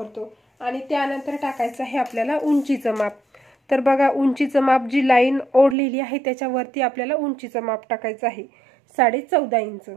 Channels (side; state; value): left; drops out; at 5.8 s